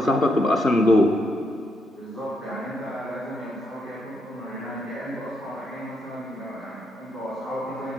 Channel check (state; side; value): normal; both; correlation 0.78